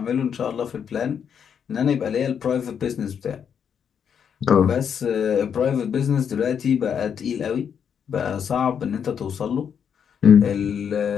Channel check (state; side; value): quieter; right; 7.7 dB